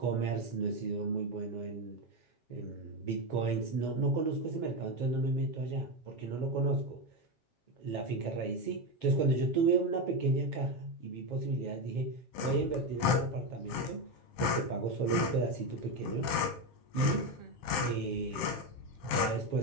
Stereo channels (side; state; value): right; late; 7.4 ms